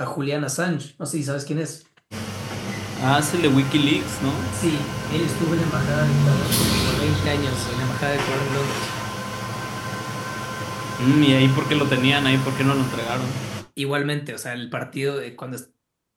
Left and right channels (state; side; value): identical; both; correlation 1.00